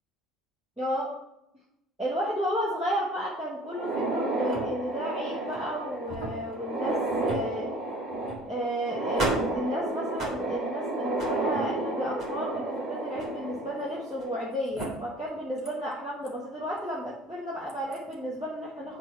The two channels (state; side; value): normal; both; correlation 0.49